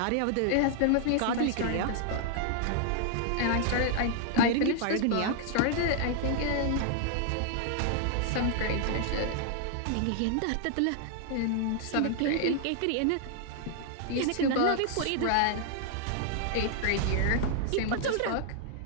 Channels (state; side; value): different; both; correlation 0.00